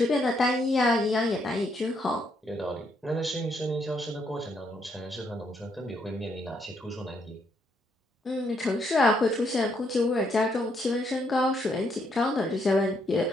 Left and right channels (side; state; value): both; normal; correlation 0.74